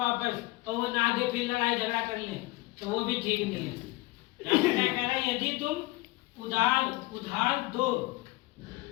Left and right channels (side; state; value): right; quieter; 22.2 dB